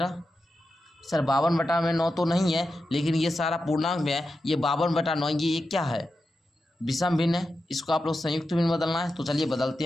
सर 52/9 तो नहीं है, लेकिन ये सारा पूर्णांक में है, ये 52/9, ये क्या है विषम भिन्न है, इसको आप लोग संयुक्त भिन्न बदलना है। तो चलिए बदलते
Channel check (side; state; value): both; normal; correlation 0.90